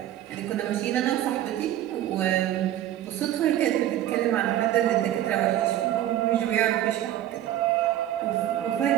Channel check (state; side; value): quieter; left; 12.7 dB